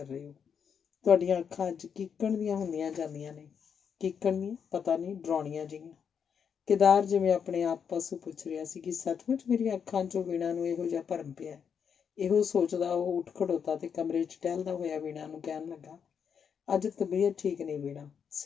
ਰਹੇ ਹੋ? ਤੁਹਾਡੀਆਂ ਅੱਖਾਂ ਅੱਜ ਕੀਕਣ ਦੀਆਂ ਹੁੰਦੀਆਂ ਜਾਂਦੀਆਂ ਨੇ। ਕੀਕਣ ਦੀਆਂ? ਪਤਾ ਨਹੀਂ, ਡਰਾਉਣੀਆਂ ਜਿਹੀਆਂ। ਕੇਦਾਰ ਜਿਵੇਂ ਆਪਣੇ ਆਪ ਪਾਸੋਂ ਪੁੱਛ ਰਿਹਾ ਸੀ ਕਿ ਸੱਚਮੁੱਚ ਮੇਰੀਆਂ ਅੱਖਾਂ 'ਚੋਂ ਵੀਣਾ ਨੂੰ ਇਹੋ ਜਿਹਾ ਭਰਮ ਪਿਆ। ਇਹੋ ਸੋਚਦਾ ਉਹ ਉੱਠ ਖੜੋਤਾ ਤੇ ਕਮਰੇ 'ਚ ਟਹਿਲਦਾ ਹੋਇਆ ਵੀਣਾ ਨੂੰ ਕਹਿਣ ਲੱਗਾ, ਅੱਜ ਤਬੀਅਤ ਠੀਕ ਨਹੀਂ ਵੀਣਾ,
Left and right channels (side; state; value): right; quieter; 7.2 dB